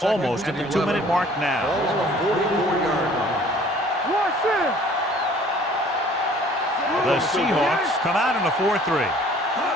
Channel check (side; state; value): both; normal; correlation 0.53